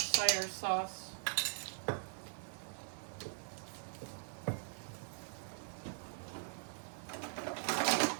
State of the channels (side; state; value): left; silent; digital silence